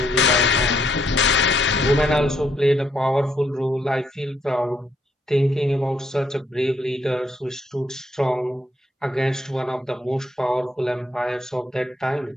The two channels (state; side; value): normal; both; correlation 0.73